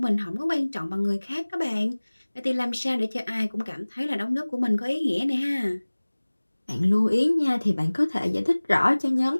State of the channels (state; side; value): inverted; both; correlation -1.00